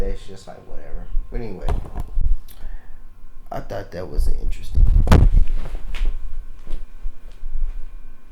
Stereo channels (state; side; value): identical; both; correlation 1.00